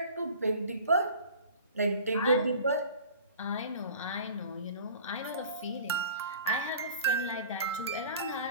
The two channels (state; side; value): inverted; both; correlation -0.43